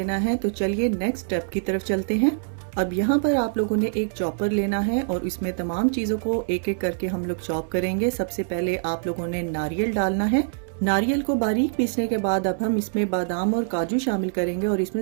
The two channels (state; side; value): silent; left; digital silence